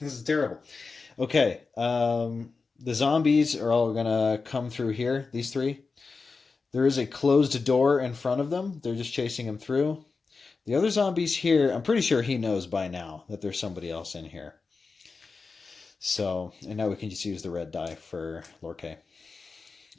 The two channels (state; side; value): quieter; right; 4.4 dB